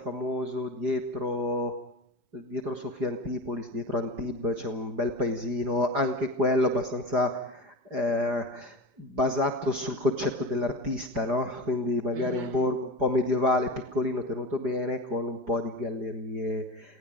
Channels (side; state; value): left; late; 4.9 ms